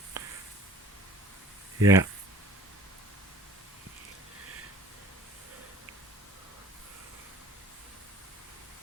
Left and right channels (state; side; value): normal; both; correlation 0.50